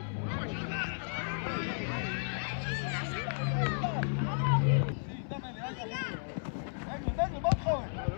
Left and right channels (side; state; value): right; silent; 55 dB below the other